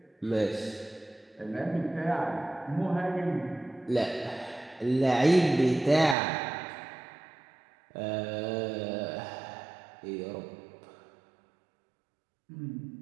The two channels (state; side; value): drops out; left; at 6.2 s